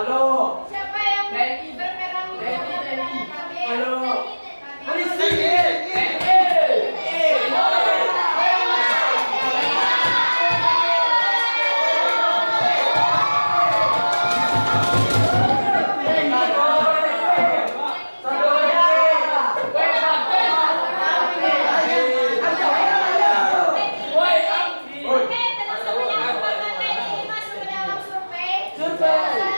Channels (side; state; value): both; inverted; correlation -1.00